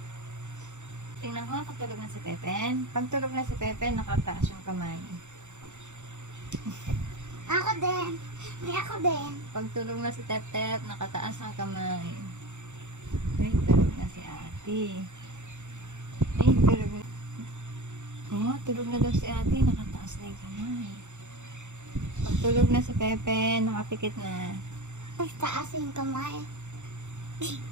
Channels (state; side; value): late; left; 0.84 ms